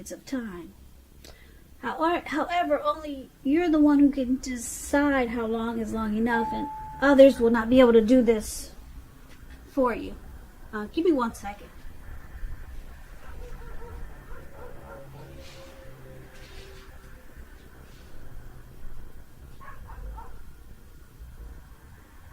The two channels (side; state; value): both; identical; correlation 1.00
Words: of time. However, only you're the one who can decide how long is long enough, and others will not be able to do this for you. Give me 1 second.